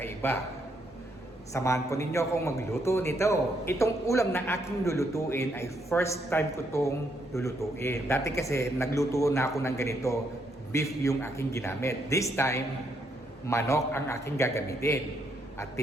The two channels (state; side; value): normal; both; correlation 0.75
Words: Samahan ko ninyo akong magluto nito. Itong ulam na aking lulutuin ay first time ko itong lulutuin. Dati kasi nagluto na ako ng ganito, beef yung aking ginamit. This time, manok ang aking gagamitin. At